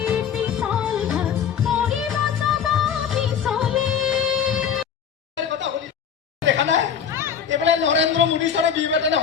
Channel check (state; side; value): quieter; right; 7.7 dB